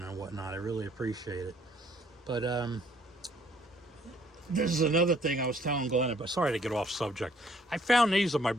and whatnot. I really appreciate it. But This is another thing I was telling Glenn about. Sorry to get off subject. I found these of my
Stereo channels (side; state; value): both; normal; correlation 0.63